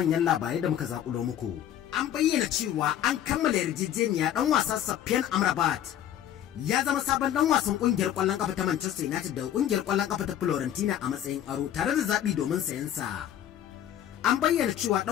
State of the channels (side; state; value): right; quieter; 10.9 dB